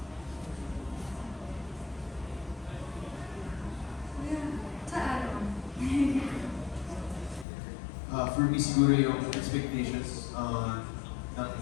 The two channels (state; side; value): drops out; right; at 7.5 s